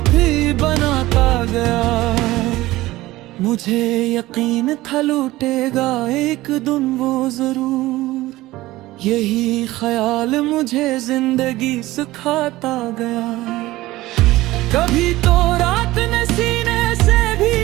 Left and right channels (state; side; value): quieter; left; 17.7 dB